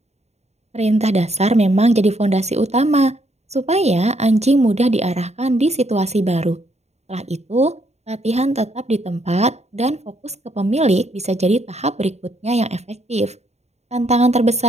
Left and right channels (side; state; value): left; late; 0.32 ms